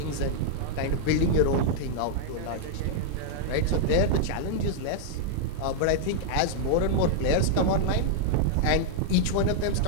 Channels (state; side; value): different; both; correlation -0.01